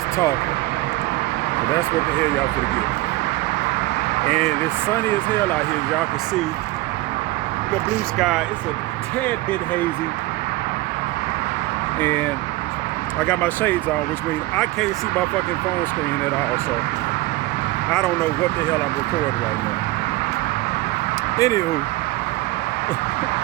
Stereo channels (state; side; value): quieter; left; 19.2 dB